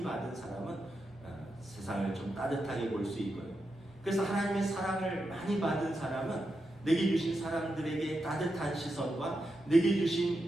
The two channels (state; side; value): normal; both; correlation 0.87